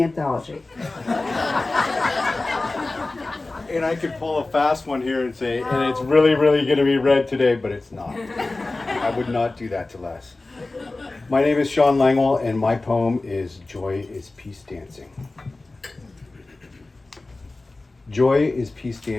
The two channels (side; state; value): right; quieter; 3.2 dB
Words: anthology. And I could pull a fast one here and say, and it's really, really going to be read today, but it's not. I would not do that to Les. My name is Sean Langwell, and my poem is Joy is Peace Dancing. Joy is peace